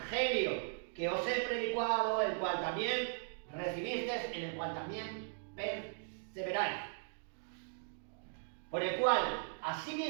que os he predicado, el cual también recibisteis, en el cual también perseveráis. Por el cual,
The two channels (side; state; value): left; silent; digital silence